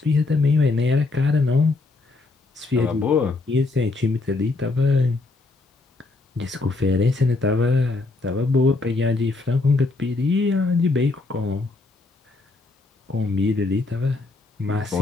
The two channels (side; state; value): right; quieter; 3.4 dB